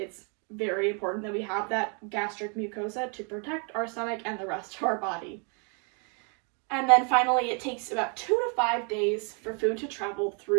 very important that we have that gastric mucosa to protect our stomach and the rest of our body. And then finally, it takes about 2 to 5 days for food to travel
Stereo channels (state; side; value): quieter; left; 37.3 dB